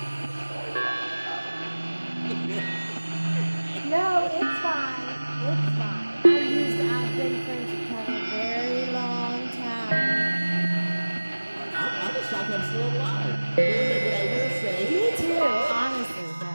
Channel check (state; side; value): inverted; both; correlation -1.00